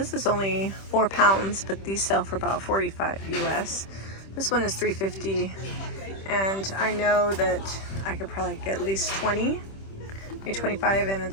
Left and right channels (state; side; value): late; right; 26 ms